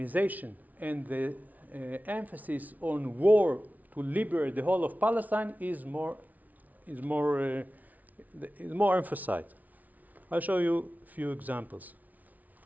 and the emphasis on war to liberate the whole of Palestine is more emphasized. I'll show you a few examples.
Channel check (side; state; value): left; late; 0.075 ms